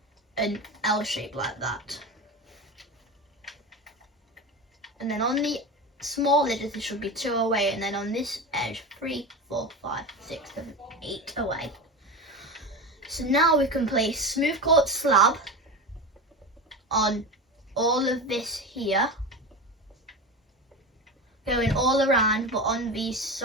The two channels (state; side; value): normal; both; correlation 0.24